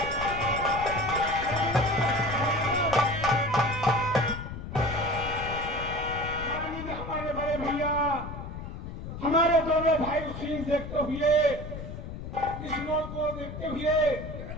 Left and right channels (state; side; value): noise; left; rumble, 9 dB below the sound